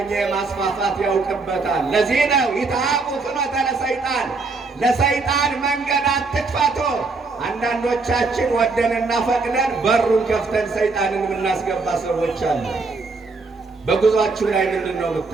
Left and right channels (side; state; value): left; quieter; 3.9 dB